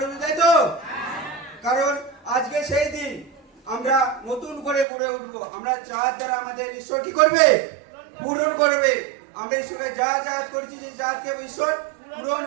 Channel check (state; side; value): drops out; left; at 4.9 s